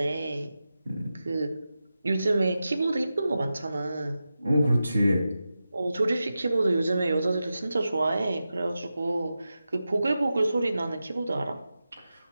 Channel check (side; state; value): both; inverted; correlation -0.92